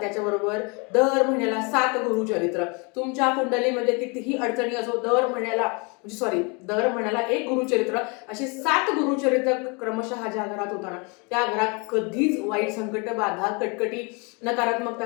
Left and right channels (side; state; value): right; quieter; 31.3 dB